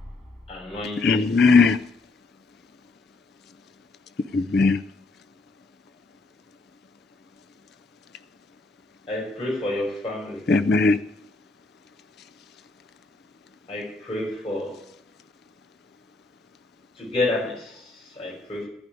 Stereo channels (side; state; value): right; quieter; 3.4 dB